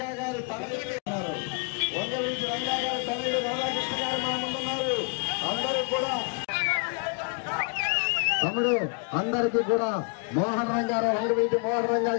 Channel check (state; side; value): quieter; right; 37.8 dB